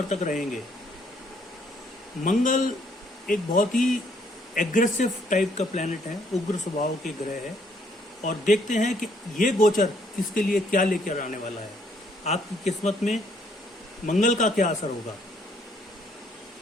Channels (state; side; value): normal; both; correlation 0.67